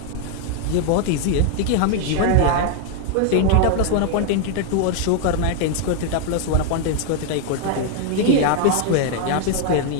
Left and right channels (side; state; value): both; different; correlation 0.00